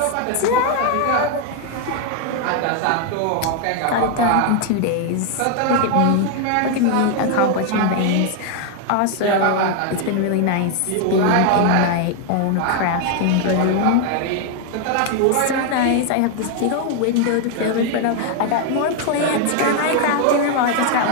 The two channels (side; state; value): both; different; correlation 0.00